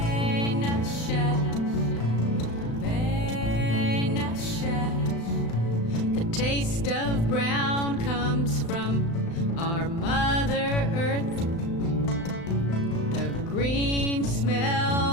The taste of brown comes from our Mother Earth, the green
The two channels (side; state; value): right; late; 35 ms